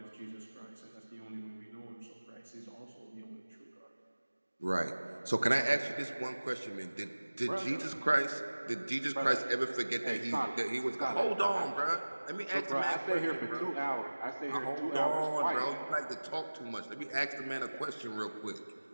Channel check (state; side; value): inverted; both; correlation -1.00